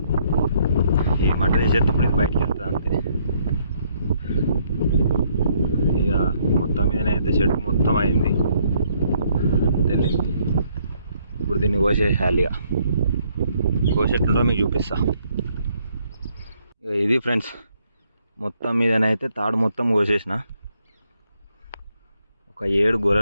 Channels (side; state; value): both; inverted; correlation -0.69